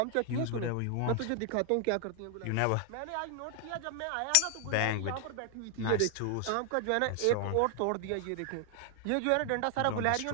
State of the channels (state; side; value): different; both; correlation 0.00